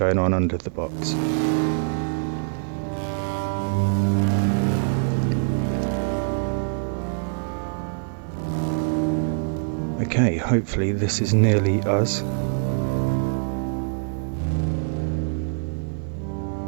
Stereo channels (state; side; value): silent; left; digital silence